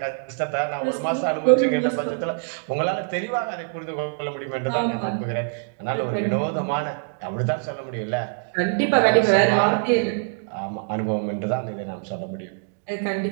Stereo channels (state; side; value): silent; left; 62 dB below the other